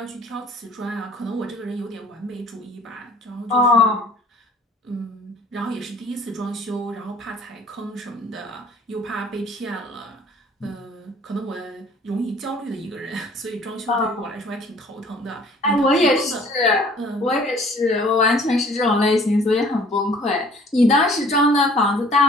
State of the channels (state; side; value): normal; both; correlation 0.53